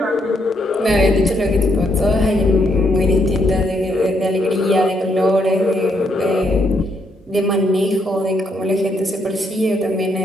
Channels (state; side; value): normal; both; correlation 0.75